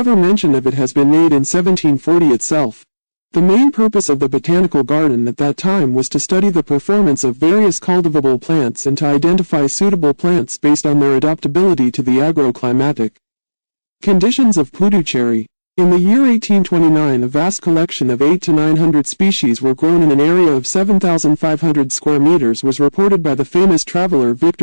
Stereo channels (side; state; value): both; inverted; correlation -1.00